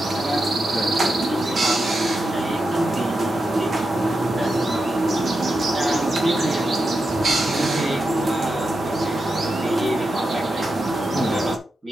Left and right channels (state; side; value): normal; both; correlation 0.88